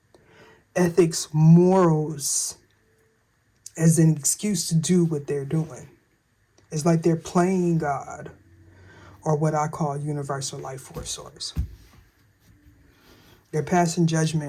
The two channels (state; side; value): identical; both; correlation 1.00